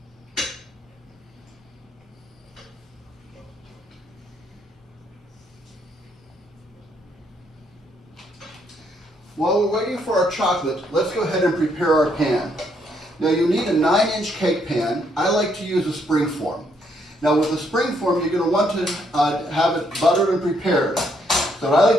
While we're waiting for our chocolate, let's go ahead and prepare our pan. Now you need a 9-inch cake pan. I like to use a spring form. Now with a spring form, you're going to want to have it buttered and prepared. So what I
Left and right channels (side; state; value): both; normal; correlation 0.72